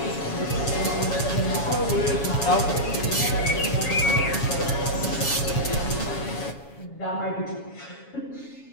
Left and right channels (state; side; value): late; right; 7.2 ms